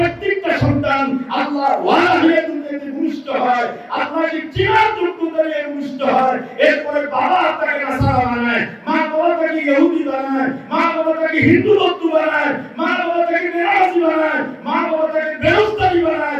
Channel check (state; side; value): identical; both; correlation 1.00